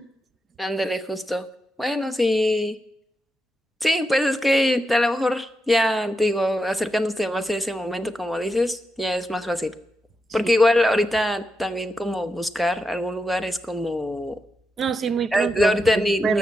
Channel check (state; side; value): normal; both; correlation 0.86